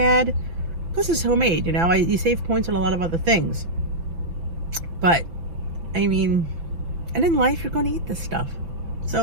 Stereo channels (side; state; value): left; late; 5.9 ms